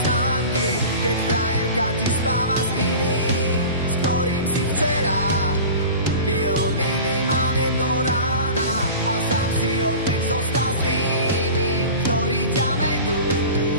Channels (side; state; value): both; inverted; correlation -0.36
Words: známky, keď frajerka ti spáva s iným, s ktorým si včera pil minimálne do rána a sám si opäť zostal s tými, ktorí ťa vedú